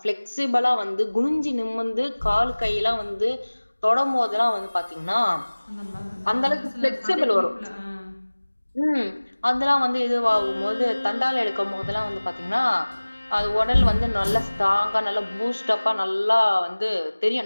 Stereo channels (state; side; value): inverted; both; correlation -1.00